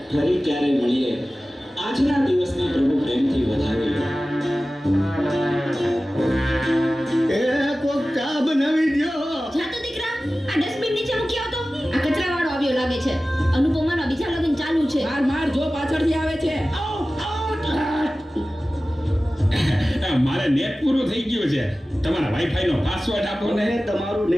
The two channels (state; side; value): normal; both; correlation 0.96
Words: ફરી ક્યારે મળીએ. આજના દિવસને પ્રભુ પ્રેમથી વધાવી લો. એ કોક ચા બનાવી દ્યો. જા તો દીકરા, આ ડસ્ટબિન નીચે મૂકી આવતો. આ કચરાવાળો આવ્યો લાગે છે. અનુપમાનો બીજા લગ્ન ચાલુ છે. માર જો પાછળથી આવે છે. મારે નેટ પૂરું થઈ ગયું છે. તમારા વાઈફાઈ નો પાસવર્ડ આપો ને. તમે તમારું